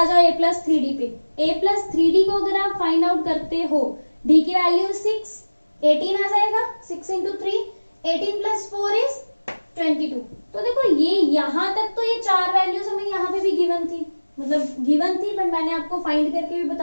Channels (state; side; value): inverted; both; correlation -1.00